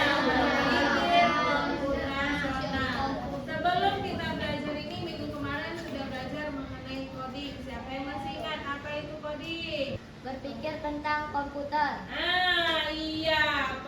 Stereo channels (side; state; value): both; identical; correlation 1.00